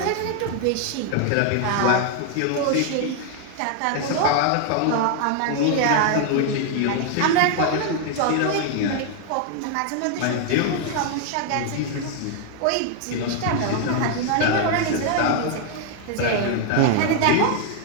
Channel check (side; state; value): both; different; correlation 0.00